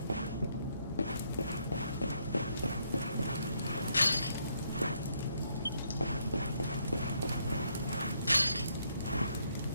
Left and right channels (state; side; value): inverted; both; correlation -0.73